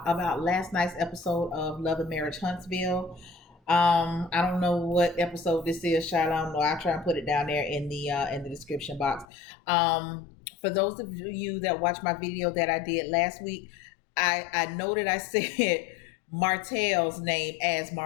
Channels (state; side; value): drops out; right; at 9.2 s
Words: last night's episode of Love and Marriage Huntsville. I don't know what episode this is, child. I don't know. I'll try and put it down there in the description box. For those of you that watched my video that I did last week, I noted I said Martell's name as